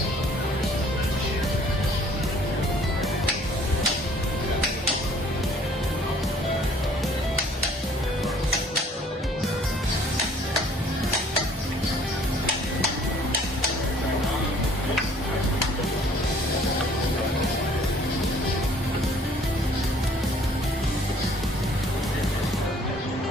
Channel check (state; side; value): normal; both; correlation 0.56